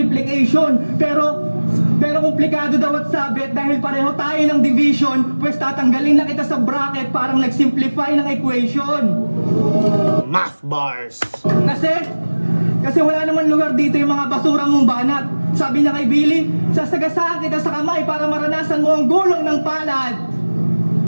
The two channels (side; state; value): both; inverted; correlation -1.00